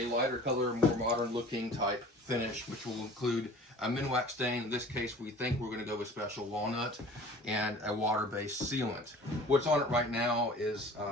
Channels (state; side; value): normal; both; correlation 0.45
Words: lighter color, more modern looking type finish, which will include a Minwax stain. In this case, we think we're going to go with special walnut and a water-based sealant. What's on it right now is